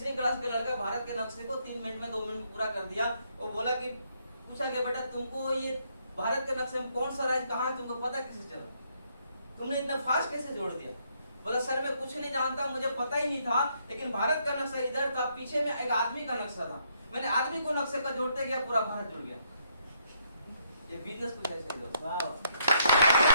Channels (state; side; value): inverted; both; correlation -0.72